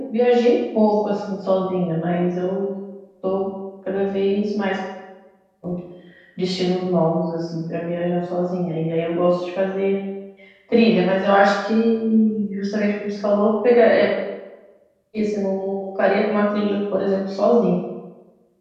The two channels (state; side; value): identical; both; correlation 1.00